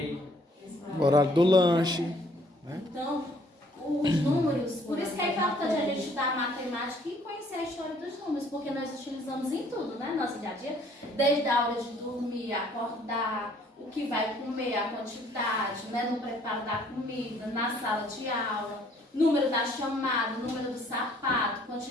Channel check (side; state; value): both; normal; correlation 0.61